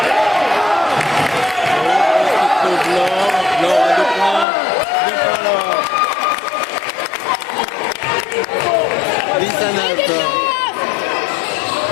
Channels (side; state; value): right; drops out; at 4.5 s